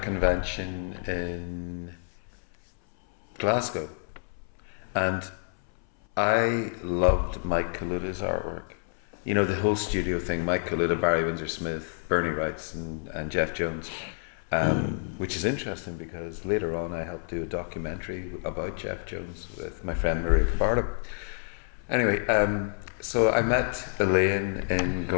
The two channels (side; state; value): right; silent; 59 dB below the other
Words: in Glasgow, and I loved Mike Kaluta's artwork. You know, the whole studio thing, Mike Kaluta, Barry Windsor-Smith, Bernie Wrights and Jeff Jones, which is interesting because later on I helped do a documentary about Jeff Jones with my friend Maria Cabardo. Anyway, so I met Elaine in